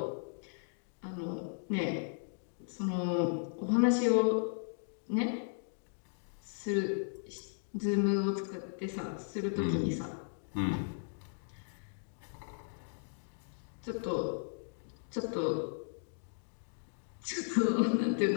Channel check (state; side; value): silent; right; digital silence